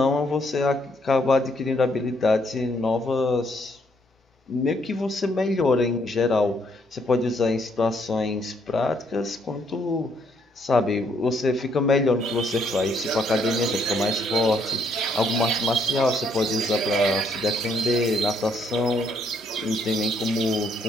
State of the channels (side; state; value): both; normal; correlation 0.71